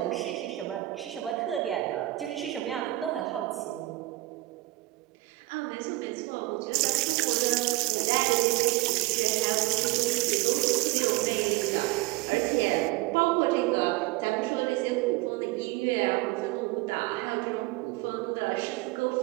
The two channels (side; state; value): left; quieter; 19.7 dB